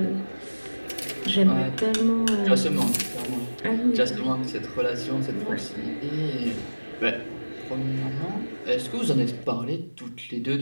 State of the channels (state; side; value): inverted; both; correlation -1.00